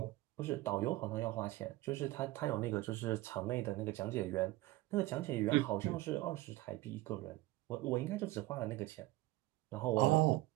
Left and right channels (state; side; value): quieter; left; 18.1 dB